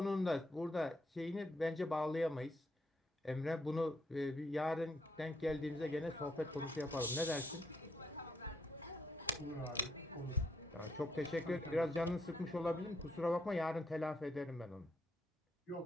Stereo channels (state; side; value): normal; both; correlation 0.74